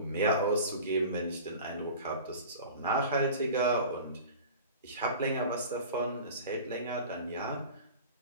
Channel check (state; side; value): inverted; both; correlation -0.38